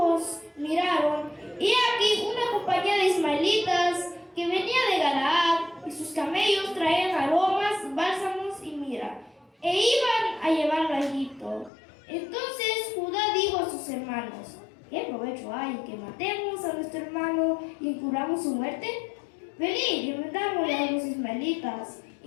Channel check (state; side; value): drops out; right; at 11.7 s